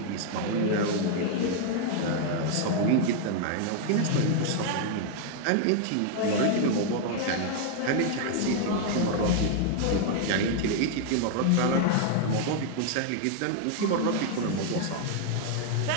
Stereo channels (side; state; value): both; different; correlation 0.00